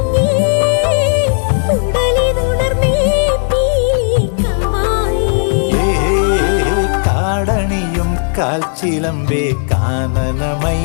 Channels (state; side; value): silent; right; digital silence